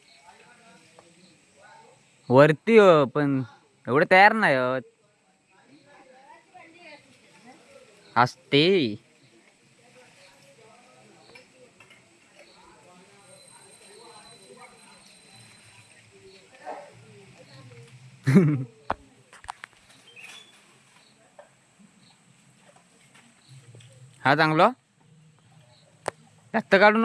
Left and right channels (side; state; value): both; identical; correlation 1.00